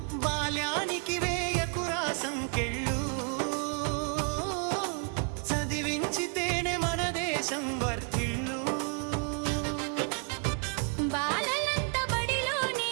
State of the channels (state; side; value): quieter; left; 37.8 dB